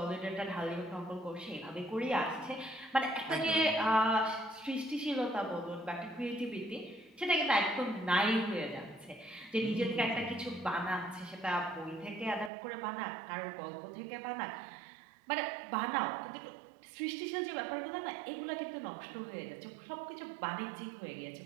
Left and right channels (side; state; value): left; drops out; at 12.5 s